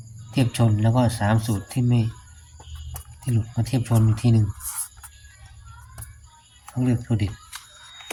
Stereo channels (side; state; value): both; identical; correlation 1.00